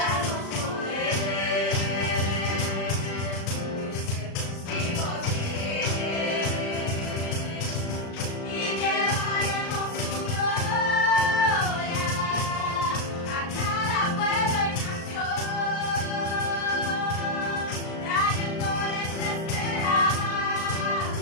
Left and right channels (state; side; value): late; right; 36 ms